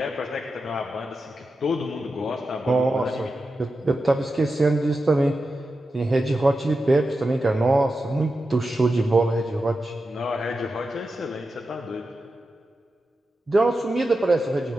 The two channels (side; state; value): both; normal; correlation 0.90